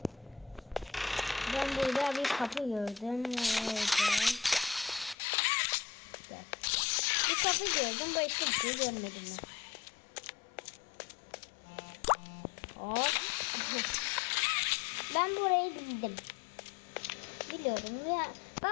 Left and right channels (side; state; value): right; drops out; at 5.2 s